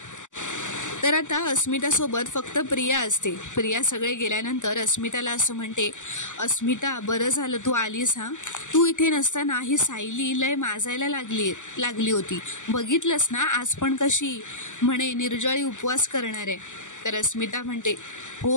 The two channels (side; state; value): right; late; 0.86 ms